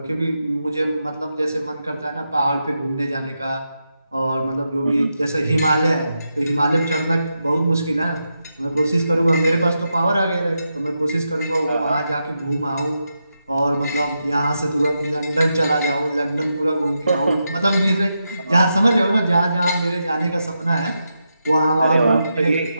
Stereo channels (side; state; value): both; inverted; correlation -0.86